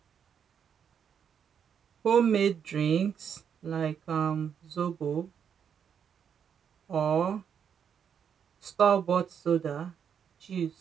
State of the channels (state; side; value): quieter; left; 7.8 dB